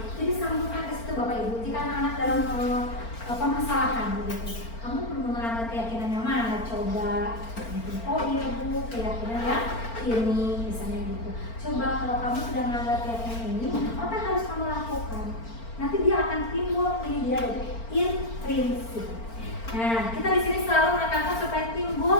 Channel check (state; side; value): late; right; 4.4 ms